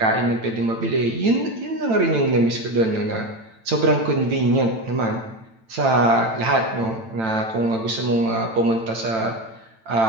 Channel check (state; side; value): late; left; 9.0 ms